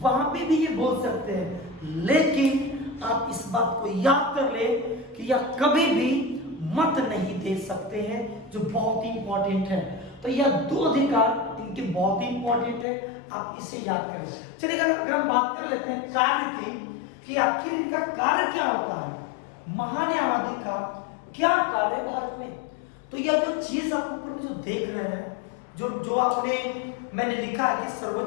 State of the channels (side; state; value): right; drops out; at 12.9 s